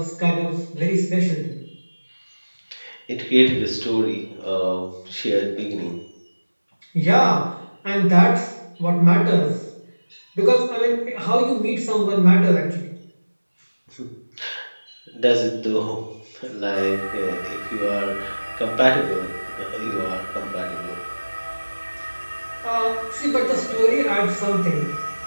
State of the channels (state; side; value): inverted; both; correlation -1.00